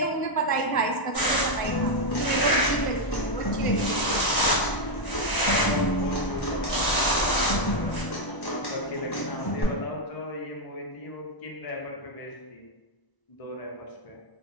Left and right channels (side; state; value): right; late; 1.0 ms